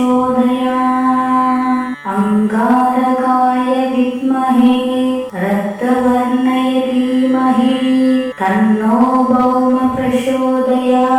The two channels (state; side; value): identical; both; correlation 1.00